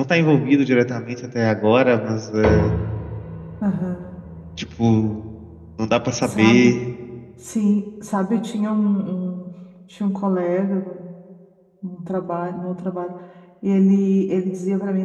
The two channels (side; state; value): both; identical; correlation 1.00